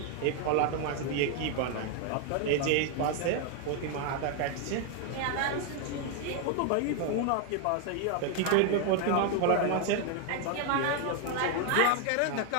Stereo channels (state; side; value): different; both; correlation 0.01